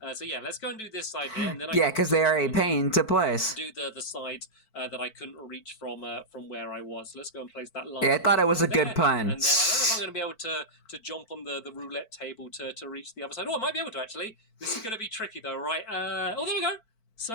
So yeah, let's go and do this side here, and then because they are a pain to place. Do the sides that I couldn't reach from where I was. So let's go and place that line. Yeah, I thought it was a good pun. And then I don't know if I'm going to be able to jump on the roulette table to reach the other side. Oh, I might be able to actually. This is going to be tricky though, right? Oh, there we go.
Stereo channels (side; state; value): right; late; 4.5 ms